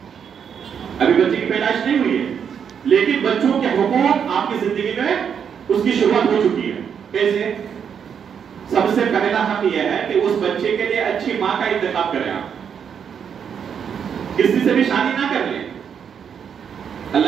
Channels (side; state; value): left; quieter; 7.5 dB